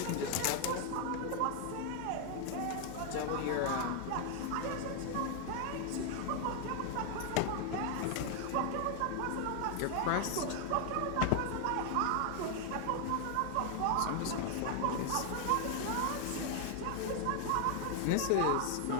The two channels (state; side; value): different; both; correlation 0.00